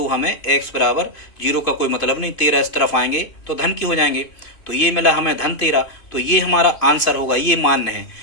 हमें x बराबर 0 का कोई मतलब नहीं, 13 इस तरफ आएंगे तो धन की हो जाएंगे, तो ये मिला हमें धन 13, तो ये हमारा आंसर होगा। ये मान्य है,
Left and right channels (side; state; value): right; late; 2.5 ms